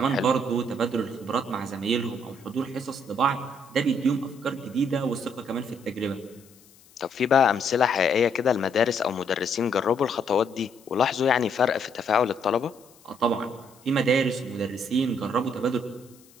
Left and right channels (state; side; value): noise; left; hiss, 27 dB below the sound